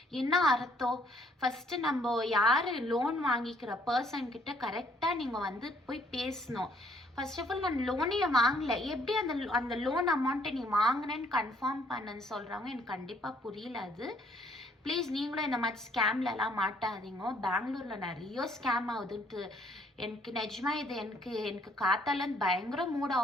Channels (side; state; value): both; normal; correlation 0.65